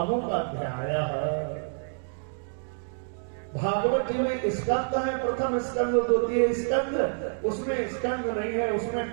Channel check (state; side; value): silent; left; digital silence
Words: अध्याय है। भागवत जी में स्कंद है, प्रथम स्कंद, द्वितीय स्कंद, उसमें स्कंद नहीं है,